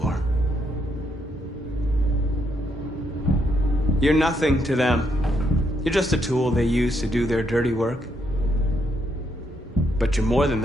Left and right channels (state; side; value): normal; both; correlation 0.76